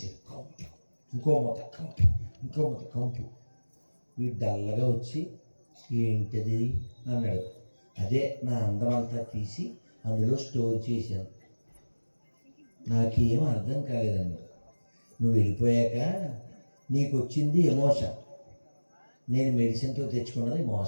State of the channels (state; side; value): inverted; both; correlation -1.00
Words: కంపు, ఇంకో మూత కంపు, ఇంకో మూత కంపు. వీడు డల్లగా వచ్చి ఏంటది అన్నాడు. అదే నా అందం అంతా తీసి అందులో స్టోర్ చేశాను, నాకేం అర్థం కాలేదన్నాడు. నువ్వు వెళ్ళిపోయాక నీకు వచ్చింది ఎమోషన్, నేను మెడిసిన్తో తెచ్చుకున్నది